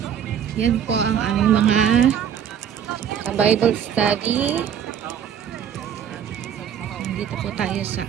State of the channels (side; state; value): left; quieter; 8.7 dB